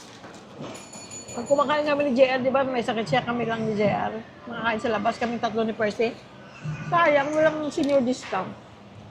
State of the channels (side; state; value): both; identical; correlation 1.00